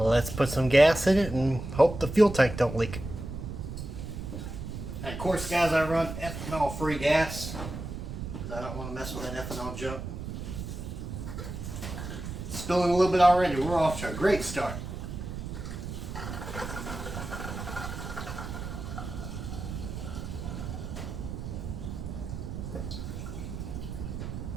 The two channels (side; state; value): right; noise; rumble, 7 dB below the sound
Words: put some gas in it and hope the fuel tank don't leak. And of course guys, I run ethanol free gas. I don't want to mess with that ethanol junk. Spilling a little bit already. We're off to a great start.